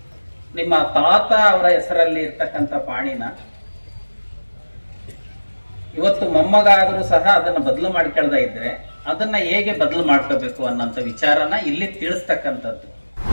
ನಿಮ್ಮ ತಾತ ಅವರ ಹೆಸರಲ್ಲಿ ಇರ್ತಕ್ಕಂಥ ಪಾಣಿನ ಇವತ್ತು ಮೊಮ್ಮಗ ಆದರೂ ಸಹ ಅದನ್ನ ಬದಲು ಮಾಡ್ಕೊಳ್ತಾ ಇದ್ರೆ ಅದನ್ನ ಹೇಗೆ ಬದಲು ಮಾಡ್ಕೋಬೇಕು ಅನ್ನೋಂಥ ವಿಚಾರನ ಇಲ್ಲಿ ತಿಳಿಸ್ತಕ್ಕಂಥದ್ದು.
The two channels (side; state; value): both; inverted; correlation -1.00